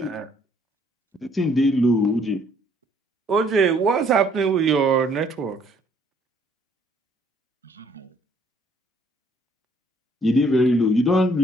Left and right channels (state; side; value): normal; both; correlation 0.64